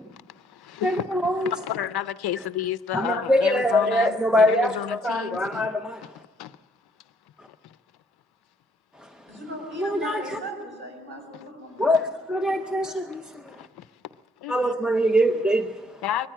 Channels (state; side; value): normal; both; correlation 0.67